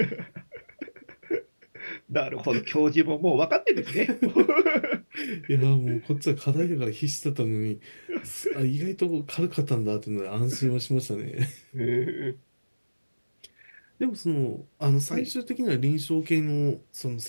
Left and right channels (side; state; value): both; inverted; correlation -1.00